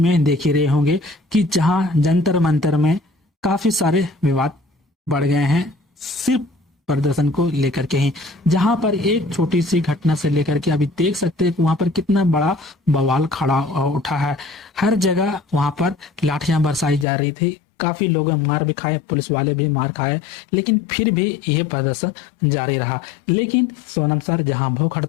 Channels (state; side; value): drops out; right; at 17.1 s